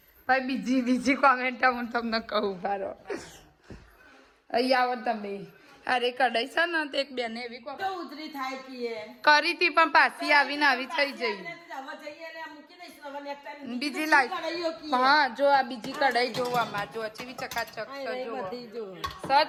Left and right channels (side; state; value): both; identical; correlation 1.00